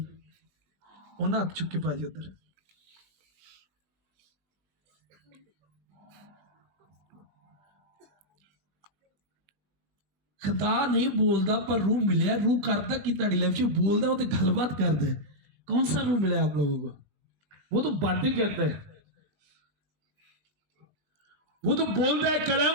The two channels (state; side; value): late; left; 20 ms